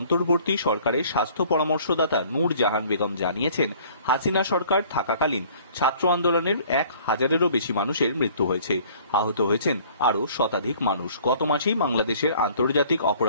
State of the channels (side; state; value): both; inverted; correlation -0.54